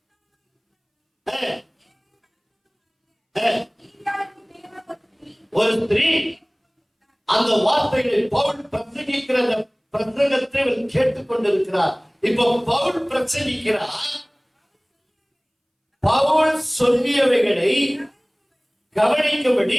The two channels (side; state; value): both; identical; correlation 1.00